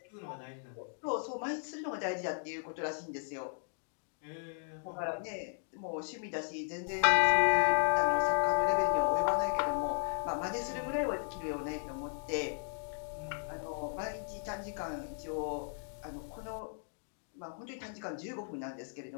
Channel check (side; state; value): right; silent; digital silence